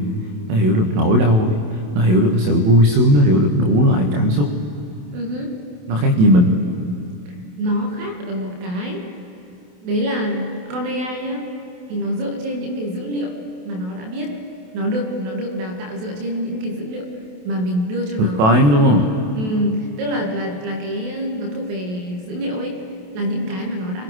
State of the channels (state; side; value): late; left; 28 ms